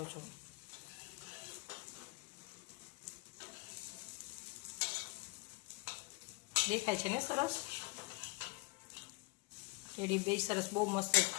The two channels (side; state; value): right; quieter; 26.8 dB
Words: છો. દેખાય છે ને સરસ? ટેડી બેર સરસ બહુ મસ્ત